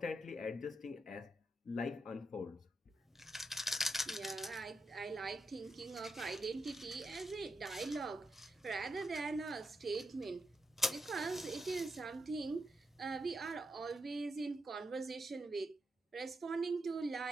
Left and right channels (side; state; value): both; normal; correlation 0.83